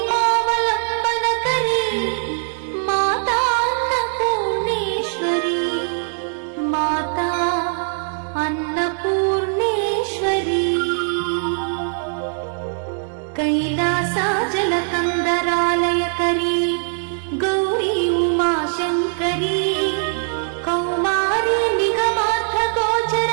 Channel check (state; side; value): silent; left; digital silence